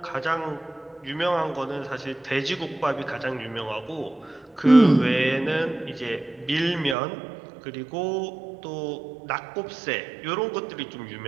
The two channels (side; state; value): left; drops out; at 7.0 s